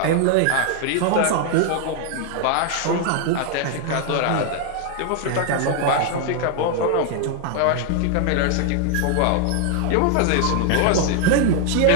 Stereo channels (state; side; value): different; both; correlation 0.00